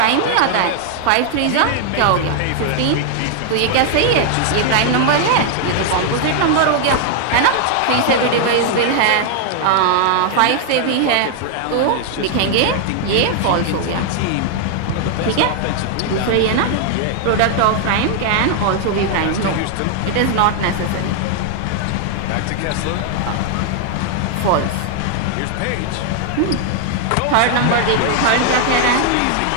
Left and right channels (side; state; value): both; different; correlation 0.00